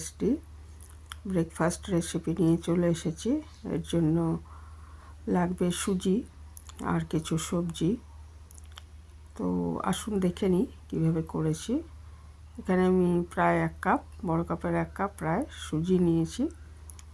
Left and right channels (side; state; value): both; identical; correlation 1.00